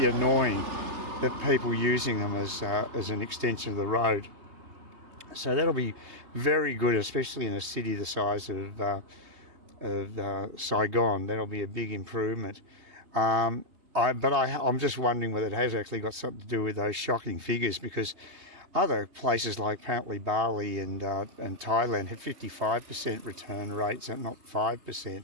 annoying that people using them as an extension of the road. So that'll be very good, especially in a city the size of Saigon. That'll be a big improvement. I'm just wondering whether it has actually got something to do with those shocking figures, because other places like apparently Bali and Thailand have 55% return rates and not 5%.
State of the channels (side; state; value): left; late; 3.2 ms